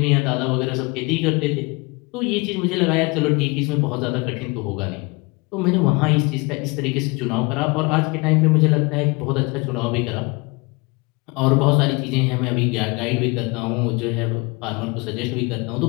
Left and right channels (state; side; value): quieter; right; 27.1 dB